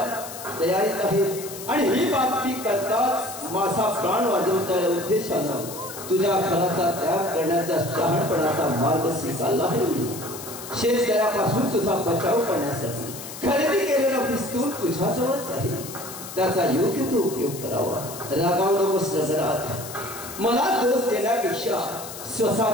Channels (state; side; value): noise; left; hiss, 12 dB below the sound